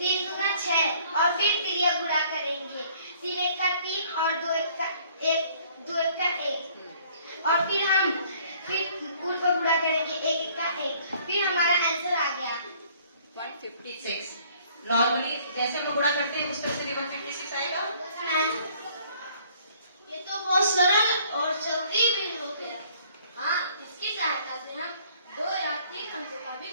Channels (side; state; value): both; inverted; correlation -0.58